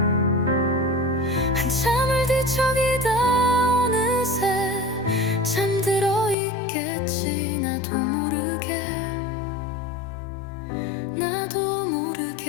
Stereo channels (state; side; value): drops out; right; at 6.4 s